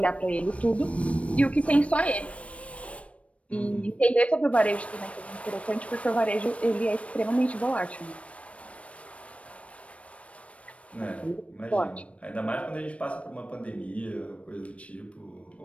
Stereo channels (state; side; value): late; right; 0.063 ms